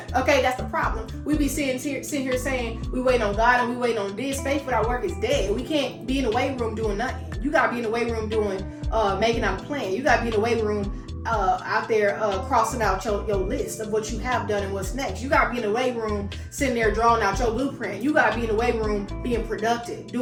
Okay, that's the problem. We be sitting here saying we waiting on God and we waiting on this. Faith without work is dead. We can't be in the waiting room doing nothing. You gotta be in the waiting room doing making out a plan. You gotta be in the waiting room out there crossing out your list of what you have done and what's next. You gotta be in the waiting room sitting there drawing out your blueprint. You gotta be in the waiting room being productive,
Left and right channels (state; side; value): identical; both; correlation 1.00